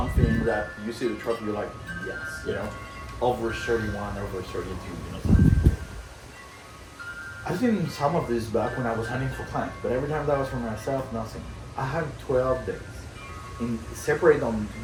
that you see the trophy, you're like, yes, you know? Over 31, over 32, you know, something. I've seen some of this back when I was hunting for clients, but every time that was for myself, nothing. I had 12 days, separate on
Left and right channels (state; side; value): identical; both; correlation 1.00